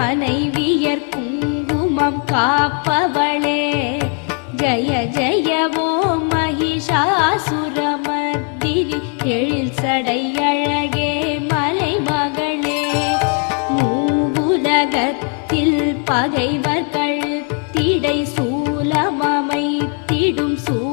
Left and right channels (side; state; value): right; quieter; 37.0 dB